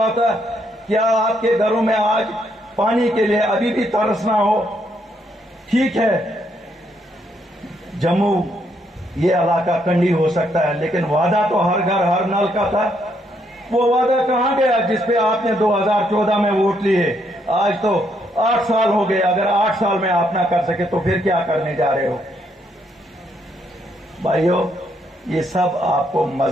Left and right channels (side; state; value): both; normal; correlation 0.74